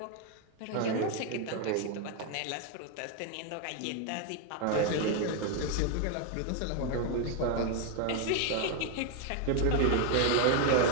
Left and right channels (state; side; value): different; both; correlation 0.01